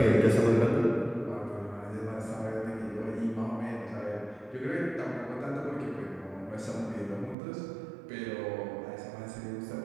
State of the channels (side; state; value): left; drops out; at 7.4 s